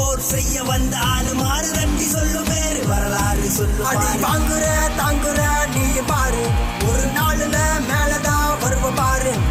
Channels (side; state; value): both; identical; correlation 1.00